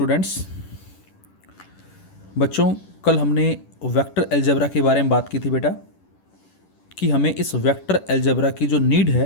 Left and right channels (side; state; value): right; late; 10 ms